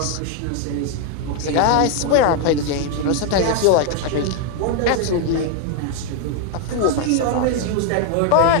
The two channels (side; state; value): both; different; correlation 0.00